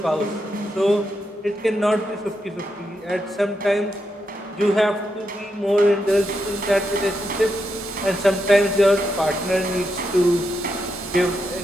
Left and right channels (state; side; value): normal; both; correlation 0.83